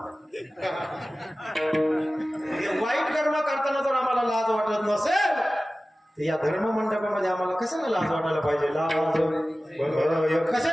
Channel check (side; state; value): both; normal; correlation 0.96